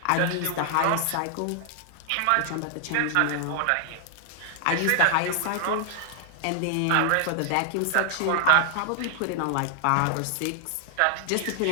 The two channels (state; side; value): different; both; correlation 0.00